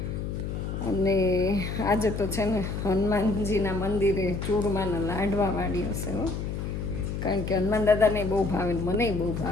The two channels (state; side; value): noise; left; hum, 4 dB below the sound